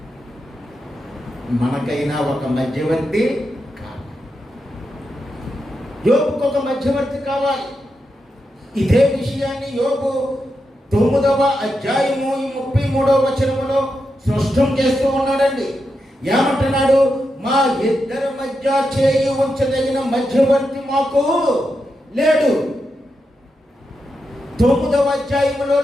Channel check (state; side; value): normal; both; correlation 0.86